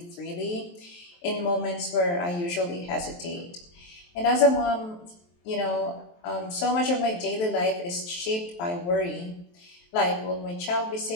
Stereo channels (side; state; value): right; late; 23 ms